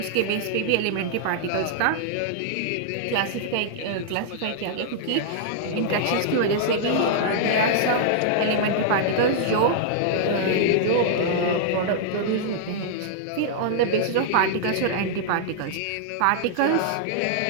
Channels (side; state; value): both; different; correlation -0.01